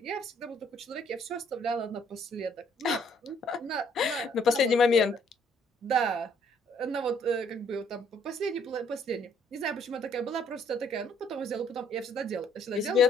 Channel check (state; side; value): normal; both; correlation 0.64